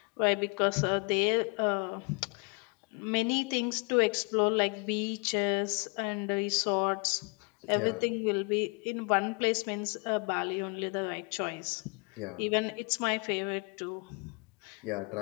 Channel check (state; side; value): quieter; right; 33.8 dB